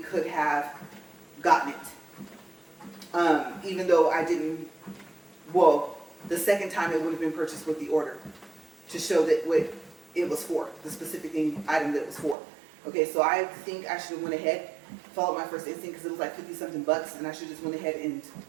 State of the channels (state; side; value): drops out; left; at 12.4 s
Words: have gotten it. Even though I didn't, well, the second time it would have been purchased with the order to show that what it was for, the specific item that it was for. Okay, so I think I should have went ahead, followed my first instinct because it was like 50-something bucks, and I should just went ahead and